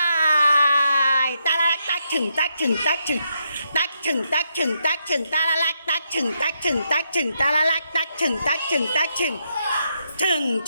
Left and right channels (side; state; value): both; inverted; correlation -0.80